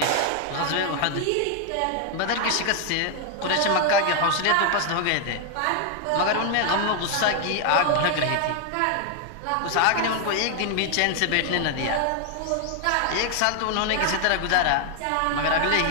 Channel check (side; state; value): both; different; correlation 0.00